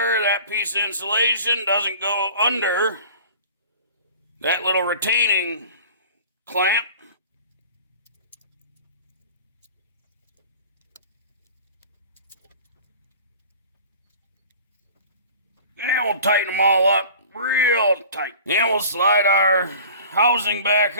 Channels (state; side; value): inverted; both; correlation -0.43